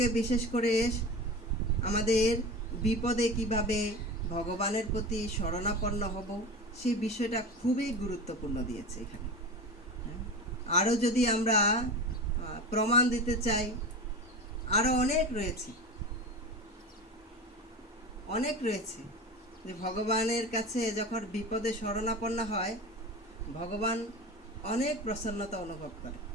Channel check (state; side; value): normal; both; correlation 0.29